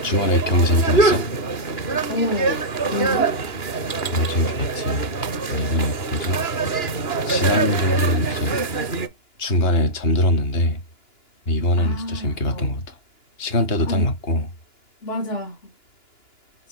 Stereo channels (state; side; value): late; right; 2.9 ms